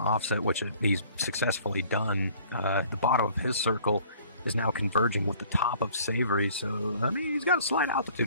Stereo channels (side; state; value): both; inverted; correlation -0.54